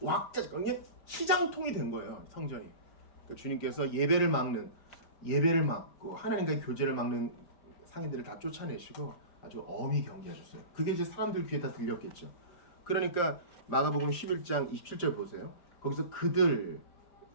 왁자 그냥 시장통이 된 거예요. 성전이. 그러니까 주님께서 예배를 막고 하나님과의 교제를 막는 상인들을 다 쫓아내시고 아주 엄히 경계하셨어요. 그게 이제 사람들 귀에 다 들렸겠죠. 그러니까 마가복음 11장 27절 보세요. 거기서 그들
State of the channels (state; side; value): late; right; 5.1 ms